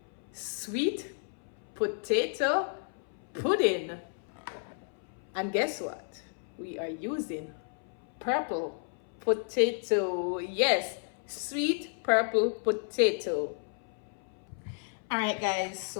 sweet potato pudding. And guess what? We are using purple potato. Yes, sweet purple potato. All right, guys,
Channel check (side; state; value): right; silent; 56 dB below the other